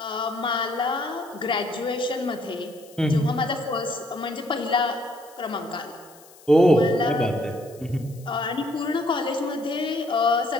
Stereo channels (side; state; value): left; noise; hiss, 24 dB below the sound